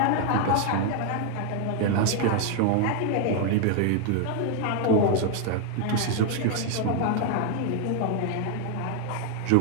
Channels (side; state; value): both; different; correlation 0.00